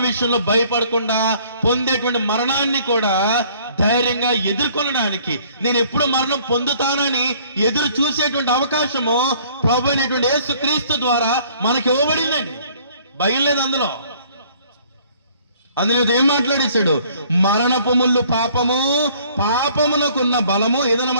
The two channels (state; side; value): inverted; both; correlation -0.58